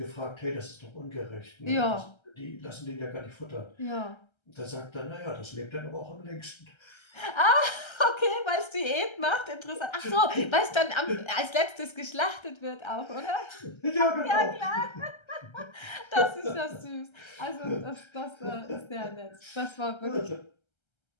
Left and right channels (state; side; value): late; right; 1.3 ms